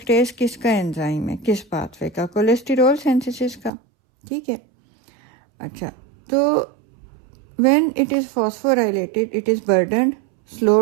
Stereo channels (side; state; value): left; drops out; at 3.7 s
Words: किसका एंजाइम है? किस पाथवे का? कोलेस्टेरॉल सिंथेसिस का, ठीक है। अच्छा, तो when it is phosphorylated it is burdened,